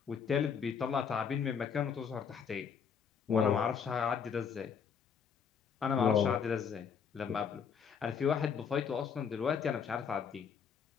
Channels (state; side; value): quieter; right; 6.8 dB